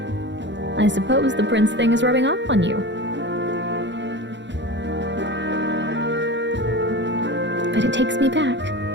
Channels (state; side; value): late; left; 0.52 ms